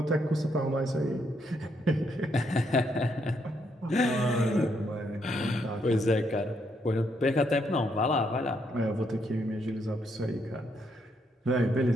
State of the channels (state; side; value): normal; both; correlation 0.75